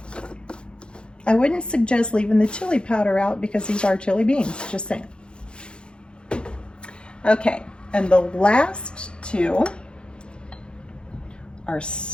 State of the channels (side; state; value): right; late; 0.053 ms